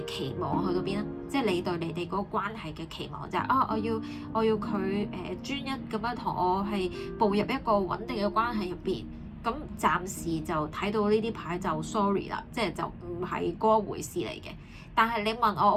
期望去到邊啦，即係你對你哋嗰個關係嘅期望就係我要佢專一咁樣同我係步入一個穩定嘅關係入邊。咁暫時就睇到呢啲牌就 sorry 啦，即係就唔係嗰回事嚟嘅。但係你問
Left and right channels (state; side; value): identical; both; correlation 1.00